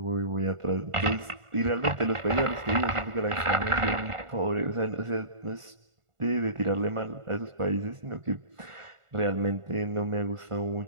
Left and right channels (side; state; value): left; late; 1.4 ms